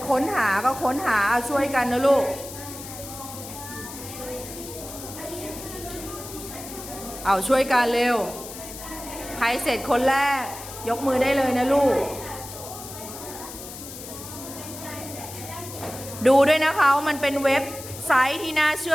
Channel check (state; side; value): noise; left; hiss, 12 dB below the sound